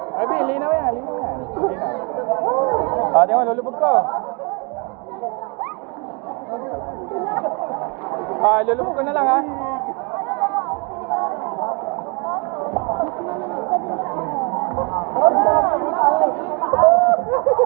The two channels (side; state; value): left; quieter; 32.6 dB